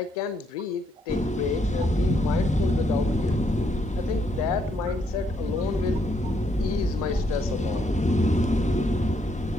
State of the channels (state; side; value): normal; both; correlation 0.73